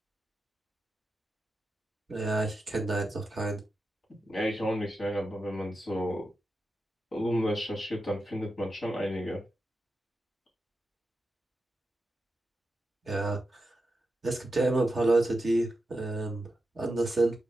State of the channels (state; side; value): normal; both; correlation 0.89